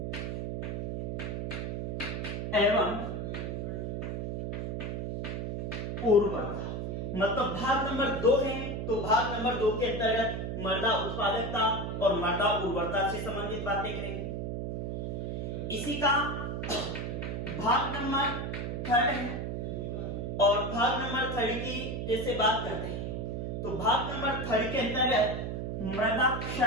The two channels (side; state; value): right; noise; hum, 3 dB below the sound